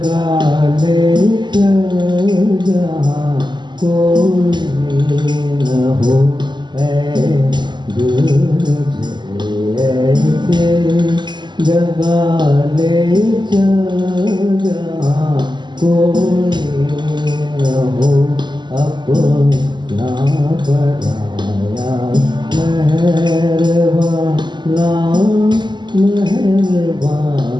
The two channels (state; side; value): late; left; 0.22 ms